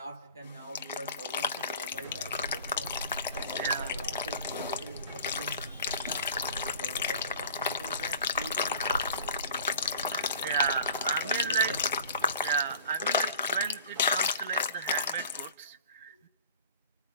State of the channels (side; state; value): both; inverted; correlation -0.44